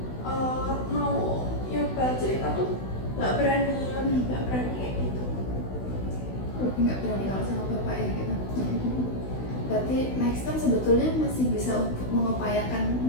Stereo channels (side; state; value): right; late; 16 ms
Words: mau nyoba cerita tuh nggak berani kayak gitu. Nggak berani kalau sama bapak ya gitu. Berarti next time sebetulnya masih bisa untuk mengupayakan